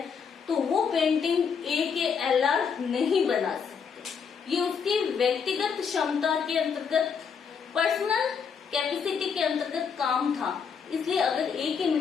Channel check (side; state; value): right; quieter; 6.4 dB